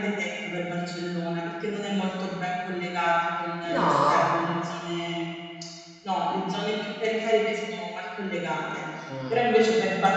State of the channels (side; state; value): both; identical; correlation 1.00